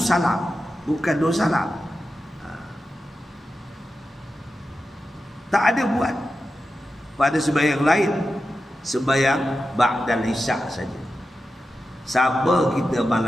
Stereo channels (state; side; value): normal; both; correlation 0.91